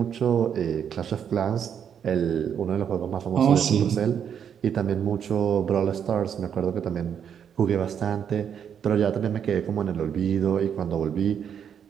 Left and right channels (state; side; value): quieter; left; 8.2 dB